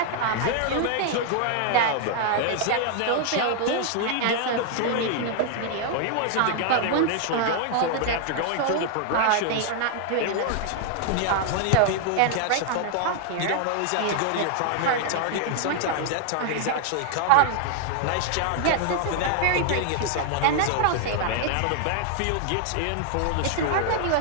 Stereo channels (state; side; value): different; both; correlation 0.00